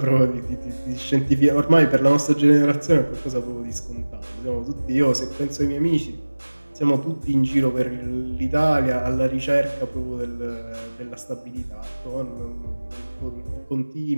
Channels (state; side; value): inverted; both; correlation -1.00